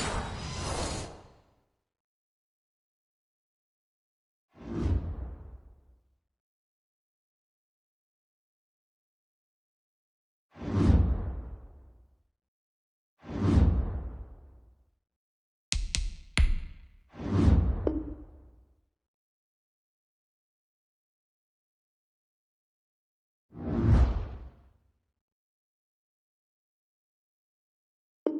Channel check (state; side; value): identical; both; correlation 1.00